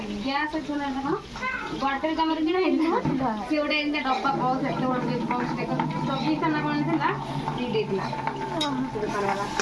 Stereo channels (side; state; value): both; identical; correlation 1.00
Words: গ্যাস আছে না এখন গডরেজ আমার কিনা ହେଇଥିଲା ସେ ଗୋଟେ ଏମିତି ଡବା ପାଉଚ ଏତେ ଗୋଟେ ପାଉଚ ଦେଖ 24 ନା କଣ ଥିଲା ଦି ଦେଇଥିଲା ଦୋକାନବାଲା